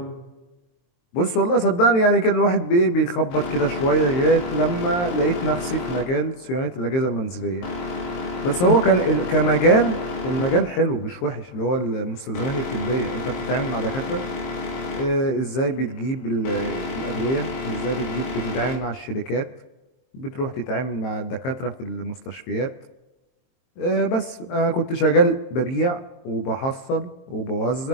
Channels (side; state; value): right; late; 23 ms